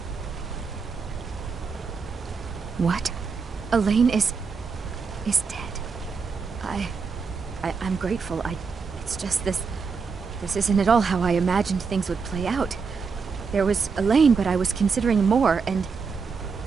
What? Elaine is dead. I'm grateful. It's just this isn't at all how I imagined things would play out. There was Elaine, but I was considering more, and...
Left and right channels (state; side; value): quieter; left; 5.3 dB